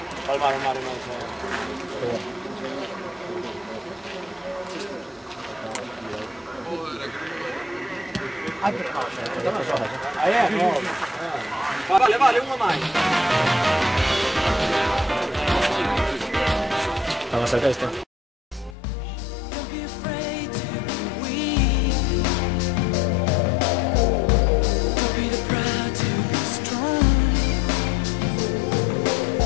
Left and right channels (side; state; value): right; drops out; at 18.8 s